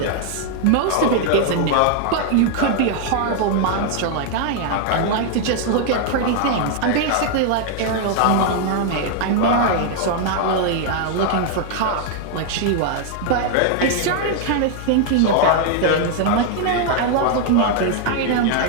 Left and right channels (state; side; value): different; both; correlation 0.00